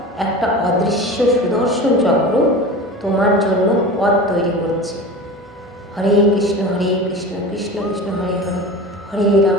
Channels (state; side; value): normal; both; correlation 0.33